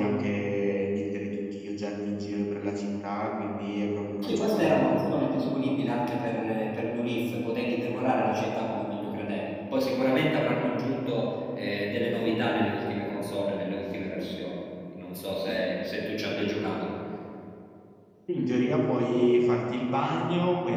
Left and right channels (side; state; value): both; identical; correlation 1.00